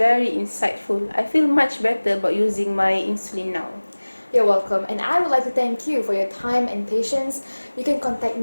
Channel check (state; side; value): inverted; both; correlation -1.00